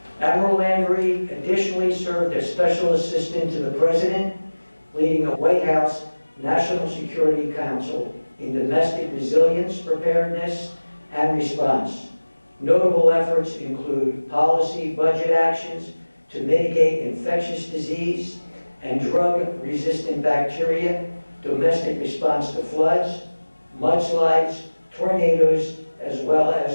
Admiral Landry additionally served as Special Assistant to the President, leading the White House National Security Council in domestic resilience, preparedness, and response. Notable efforts include policy budget actions to mitigate infectious disease and drug-resistant bacteria, domestic response to floods, mudslides, tornadoes, as well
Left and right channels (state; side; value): inverted; both; correlation -1.00